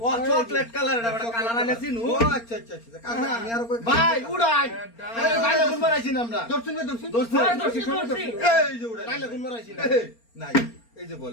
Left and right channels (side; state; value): right; late; 4.3 ms